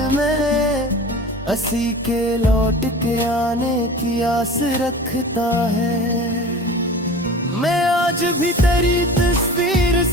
में, हंसी के लौट के आने की आस रखता है। मैं आज भी तेरी तस्वीर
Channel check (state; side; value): normal; both; correlation 0.37